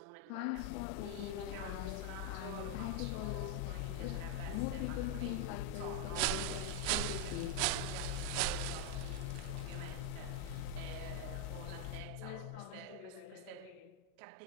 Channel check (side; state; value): both; different; correlation 0.01